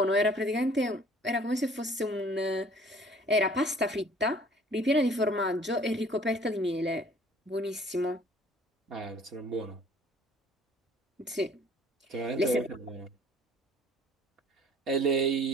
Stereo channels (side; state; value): both; normal; correlation 0.53